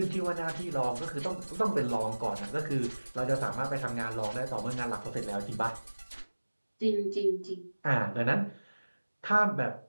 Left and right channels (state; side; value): inverted; both; correlation -1.00